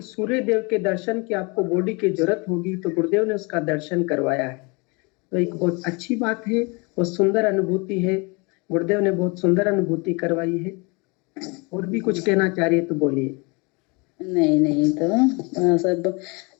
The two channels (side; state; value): right; quieter; 29.2 dB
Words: सूर्यदेव के दर्शन की आपको बॉडी की जरूरत होगी, तो गुरुदेव ने उसका दर्शन करवाया है। तो एक बहुत अच्छी बात है, बहुत सुंदर अनुभूति है। गुरुदेव ने बहुत सुंदर अनुभूति करवाई है। और भी कुछ कहना चाह रही है तो बोलिए। नहीं तो सब